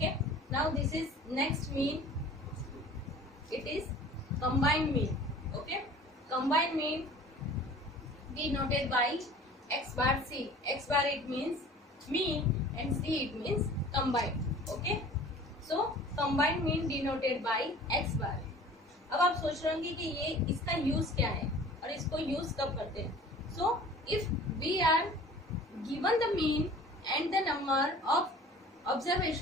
Now this is next mean. It is combined mean. Okay, combined mean denoted by x bar c. X bar it means mean and c it means combined. Okay, so combined mean denoted by x bar. अब आप सोच रहे होंगे कि ये इसका use क्या है और इसको यूज कब करते हैं. So if we are given the mean and the number of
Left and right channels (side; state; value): both; normal; correlation 0.45